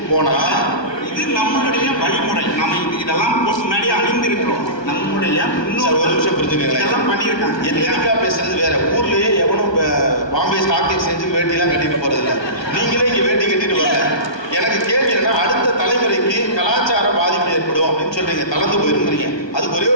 போனா இது நம்மளுடைய வழிமுறை. நம்ம இதெல்லாம் முன்னாடி அணிந்திருக்கிறோம். நம்முடைய ஒரு நிமிஷம் புரிஞ்சுக்கங்களேன். இதெல்லாம் பண்ணியிருக்காங்க. எத்தனைக்கா பேசுறது வேற. ஊர்லயே எவனும் பாம்பே ஸ்டாக் எக்ஸ்சேஞ்சுக்கு வேட்டிலாம் கட்டிட்டு போறதில்ல. நீங்களே இங்க வேட்டி கட்டிட்டு வரல. எனக்கு கேள்வி என்னன்னா, அடுத்த தலைமுறைக்கு கலாச்சார பாதிப்பு ஏற்படும் அப்படின்னு சொல்றீங்க, தளர்ந்து போயிருக்கிறீங்க. அதுக்கு ஒரே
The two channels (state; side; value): late; right; 1.2 ms